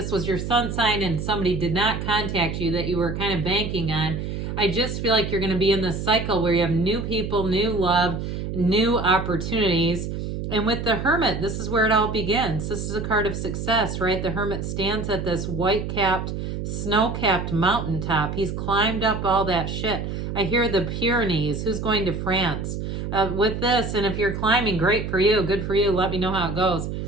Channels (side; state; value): right; noise; hum, 5 dB below the sound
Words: was your sun sign and somebody did not contact you that you were kind of banking on, I just feel like you're going to be in this cycle where you have new people, new love, new opportunities. And with the Hermit, this is where it all begins. This is a card of success, right? The Hermit stands at this white-capped, snow-capped mountaintop. He's climbed up all that shit. I hear the Pyrenees. Who's going to France? With this, and if you're climbing, great for you, good for you, let me know how it goes.